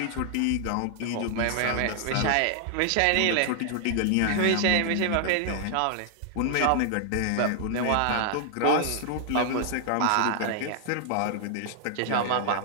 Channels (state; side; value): different; both; correlation 0.00